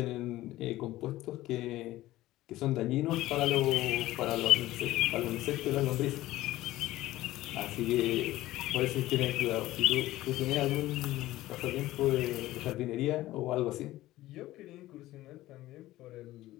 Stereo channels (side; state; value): right; quieter; 16.2 dB